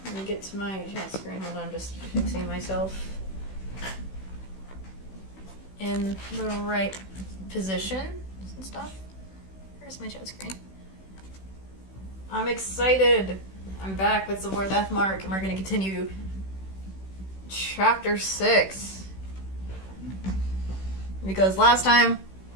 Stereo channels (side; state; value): right; late; 16 ms